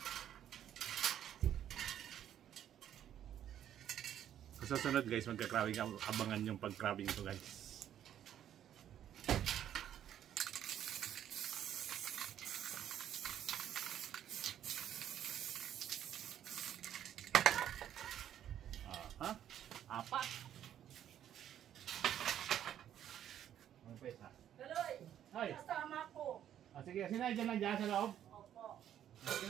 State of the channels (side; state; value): left; quieter; 10.6 dB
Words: Sa susunod guys, magka-crabbing, abangan yung pag-crabbing ito guys. Aha, apat. Ano pa isa? Kaloy, Ay. kasama ko. Sige, sinay dyan lang dyan sa loob. Opo.